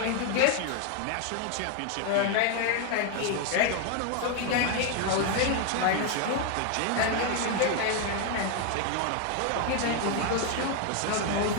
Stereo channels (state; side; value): different; both; correlation 0.01